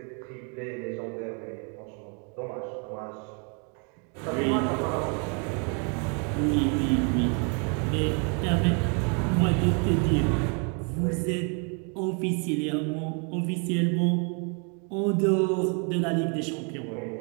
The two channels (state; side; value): quieter; left; 37.6 dB